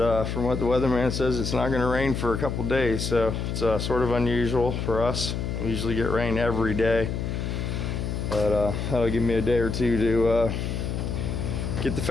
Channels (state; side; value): noise; left; hum, 3 dB below the sound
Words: from what the weatherman says, it's not going to rain for a couple days, so it's sort of unusual for us. We usually get rain every day, but that'll give me a day or two to get the